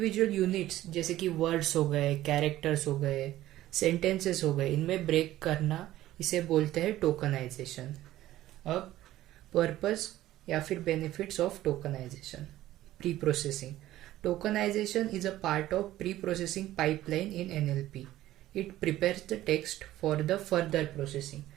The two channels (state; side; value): quieter; left; 14.6 dB